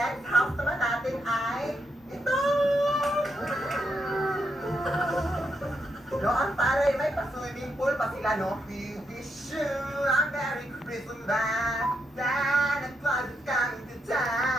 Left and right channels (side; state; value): both; normal; correlation 0.81